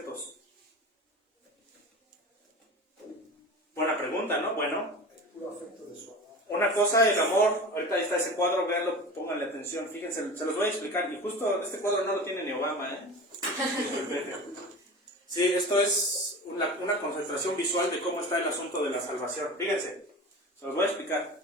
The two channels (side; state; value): both; normal; correlation 0.33